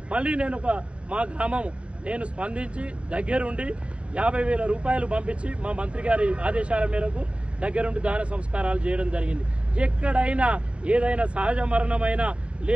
మళ్ళీ మా గ్రామం నేను స్పందించి దగ్గరుండి 50,000 రూపాయలు పంపించి మా మంత్రి గారి ఆదేశాల మేరకు దగ్గరుండి దహన సంస్కారాలు చేయడం జరిగింది. ఎక్కడైనా ఏదైనా సహజ మరణమైనా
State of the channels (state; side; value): late; left; 0.060 ms